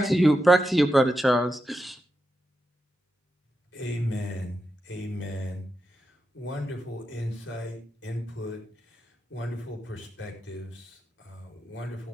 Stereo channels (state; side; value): normal; both; correlation 0.87